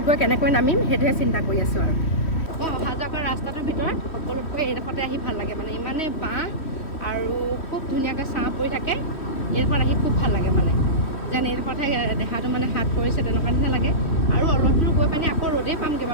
গৈ কেনেকৈ নামিম সেইটোহে চিন্তা কৰি আছোঁ আৰু। মই অহা যোৱা কৰা ৰাস্তাটোৰ ভিতৰত সকলোতকৈ এইডোখৰতে আহি ভাল লাগে, মানে ইমানেই বাঁহ আৰু খুব ধুনীয়াকৈ ছাঁ পৰি থাকে। এইডোখৰত আহি খুব ভাল লাগে, মানে যেন এইডোখৰতহে দেহাটো মানে হাত পৰিছে তেনেকুৱা নিচিনা লাগে। আৰু অলপ দূৰ গৈ পানি আকৌ ৰ'দেই পামগৈ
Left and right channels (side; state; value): right; late; 3.1 ms